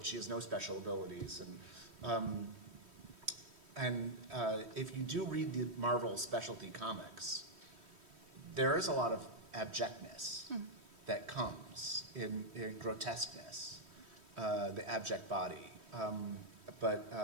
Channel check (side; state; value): left; late; 3.1 ms